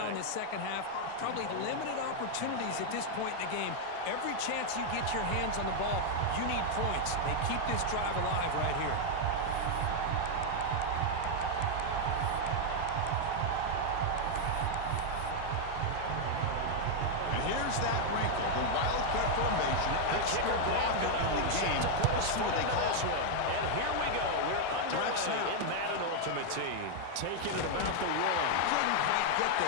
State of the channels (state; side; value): different; both; correlation 0.00